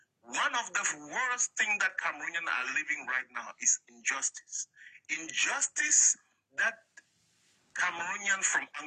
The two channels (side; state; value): both; identical; correlation 1.00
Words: One of the worst things that Cameroonians are living right now is injustice. injustice that Cameroonians from